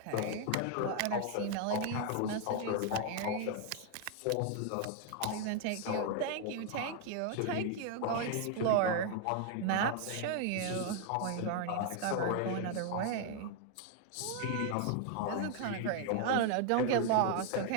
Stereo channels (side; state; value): both; different; correlation 0.00